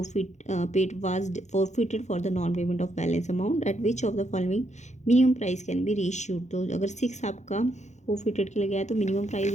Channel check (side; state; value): right; late; 0.34 ms